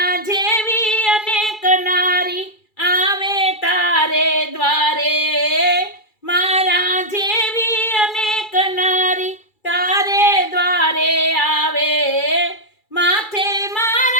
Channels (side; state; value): right; late; 2.3 ms